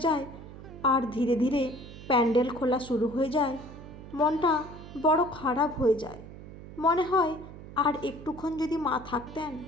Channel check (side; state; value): right; noise; hum, 14 dB below the sound